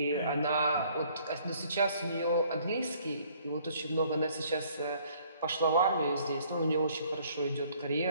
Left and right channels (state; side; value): inverted; both; correlation -0.60